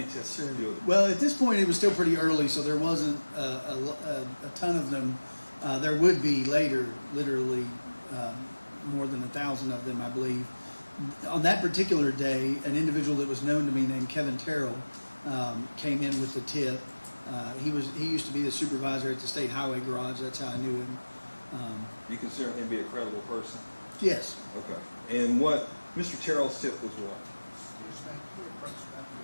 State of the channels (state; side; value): inverted; both; correlation -1.00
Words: tips did you do? Well, at this point, it was still pretty early, so there wasn't a ton of them. There would be later, literally more than 1,000 of them, I believe. On that particular day, an individual that was known to me named Kevin Terrell came in with the tip. He used to be the supervisor at the State Highway Garage. That's how I knew him. You consider him to be a credible person? Yes. Okay. And what Mr. Terrell's tip was what?